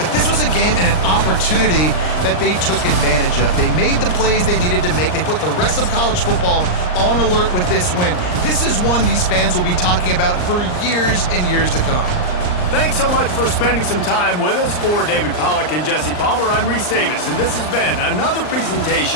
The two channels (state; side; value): late; right; 39 ms